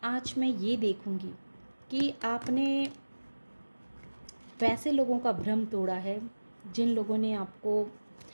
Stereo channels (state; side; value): inverted; both; correlation -1.00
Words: आज मैं ये देखूँगी कि आपने वैसे लोगों का भ्रम तोड़ा है जिन लोगों ने आपको